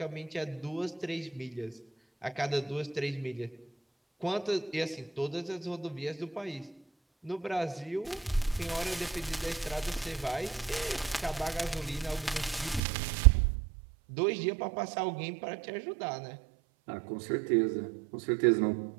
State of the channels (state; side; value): drops out; left; at 12.8 s